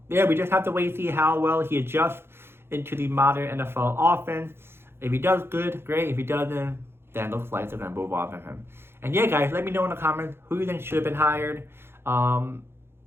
yeah, we just have to wait to see how well he adjusts into the modern NFL offense. If he does good, great. If he doesn't, then it looks like they're going to move on from him. And yeah, guys, let me know in the comments who you think should have been hired.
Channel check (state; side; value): late; left; 0.11 ms